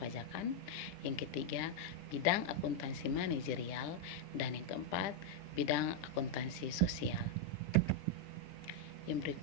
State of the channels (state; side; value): late; right; 10 ms